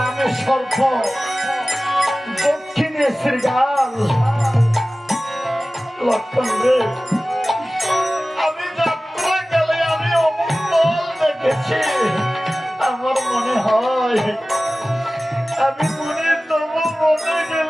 সর্প, দক্ষিণে শ্রীগাল। লক্ষণ রে, আমি যাত্রাকালে আমি অমঙ্গল দেখেছি। আমার মনে হয় আমি মনে তবু মনে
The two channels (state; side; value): normal; both; correlation 0.97